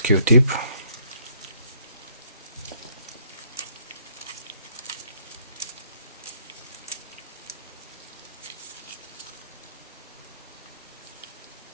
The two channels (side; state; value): both; inverted; correlation -0.66